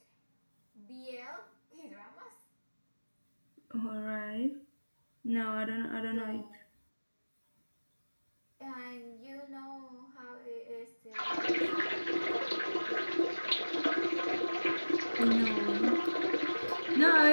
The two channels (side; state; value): both; inverted; correlation -1.00